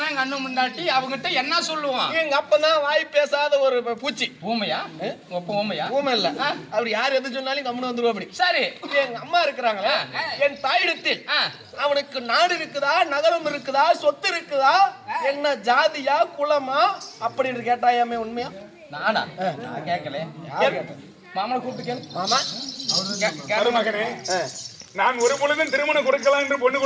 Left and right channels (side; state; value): both; identical; correlation 1.00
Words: கண்ணு முண்டாட்டி அவங்கிட்ட என்ன சொல்லுவான்? எங்க அப்பதான் வாய் பேசாத ஒரு பூச்சி. ஊமையா? ஊமையா? ஊமை இல்ல. அப்படி யார் எது சொன்னாலும் கம்முன்னு வந்துருவா. அப்படி சரி. எங்க அம்மா இருக்கிறாங்களே என் தாயிடத்தில் அவனுக்கு நாடு இருக்குதா நகரம் இருக்குதா சொத்து இருக்குதா என்ன ஜாதியா குலமா அப்படின்னு கேட்டாயாமே உண்மையா? நானா? நான் கேட்கல. மாமனை கூப்பிட்டு கேளு. மாமா மகனே நான் ஒரு பொழுதும் திருமணம் கொடுக்கலாம் என்று பொண்ணு